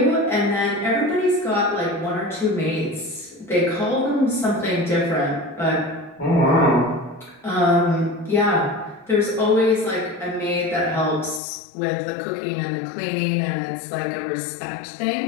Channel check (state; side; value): drops out; right; at 11.4 s